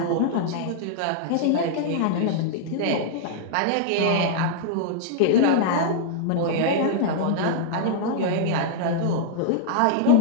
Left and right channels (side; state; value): both; different; correlation -0.01